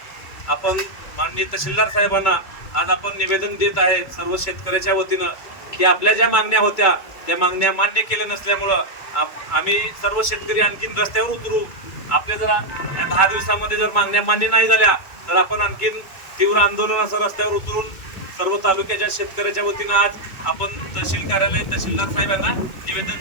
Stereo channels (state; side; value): late; right; 2.2 ms